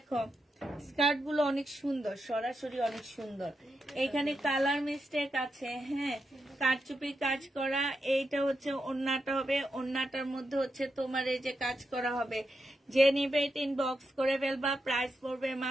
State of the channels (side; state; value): both; normal; correlation 0.86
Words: স্কার্ট গুলো অনেক সুন্দর, সরাসরি অনেক সুন্দর। এখানে কালার মিস্টেক আছে। হ্যাঁ, কারচুপি কাজ করা। এইটা হচ্ছে ওড়নাটা হবে, ওড়নাটার মধ্যে হচ্ছে তোমার এই যে কাজ করা হবে। যে নিবে এটা ইনবক্স করে ফেলবা, প্রাইস পড়বে